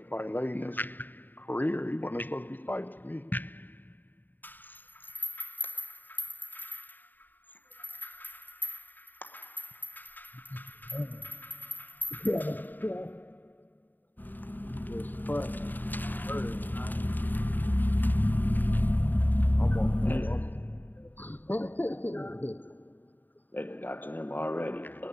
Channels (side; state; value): right; late; 0.089 ms